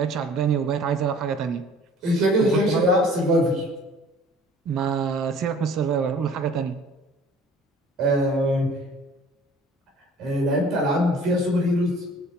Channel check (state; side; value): normal; both; correlation 0.50